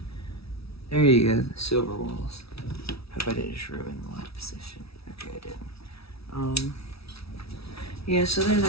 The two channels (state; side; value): late; right; 0.77 ms